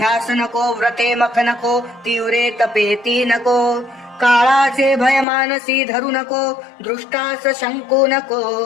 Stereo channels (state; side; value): drops out; right; at 5.2 s